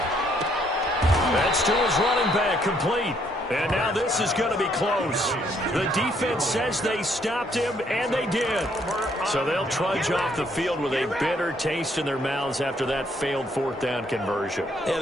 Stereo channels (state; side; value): normal; both; correlation 0.69